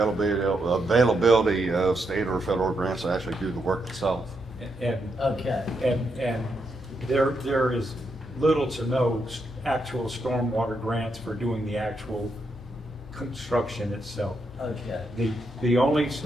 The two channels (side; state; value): both; normal; correlation 0.81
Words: of state or federal grants to actually do the work itself. Okay. And there is little to no actual stormwater grants for doing the actual construction itself. Okay. The only